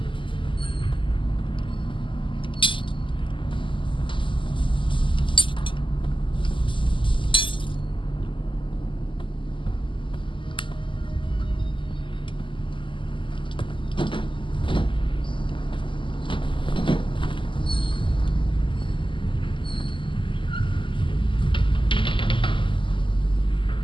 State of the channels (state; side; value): late; right; 0.25 ms